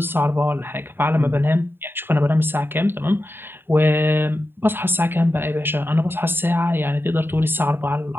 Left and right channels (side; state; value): left; late; 0.10 ms